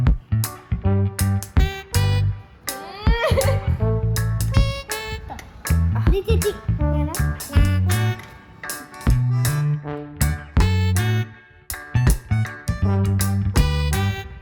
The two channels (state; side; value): identical; both; correlation 1.00